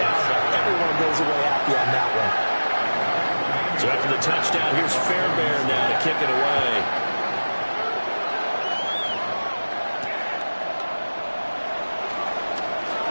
Everyone goes away happy on that one. So after the touchdown, here's Fairbairn now to kick it away.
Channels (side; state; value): both; inverted; correlation -1.00